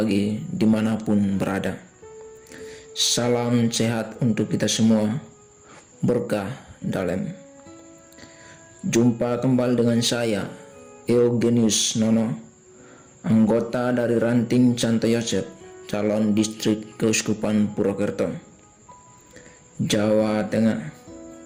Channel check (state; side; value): identical; both; correlation 1.00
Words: dimanapun berada. Salam sehat untuk kita semua, berkah dalam. Jumpa kembali dengan saya, Eugenius Nono, anggota dari Ranting Santo Yosef, calon distrik Keuskupan Purwokerto, Jawa Tengah.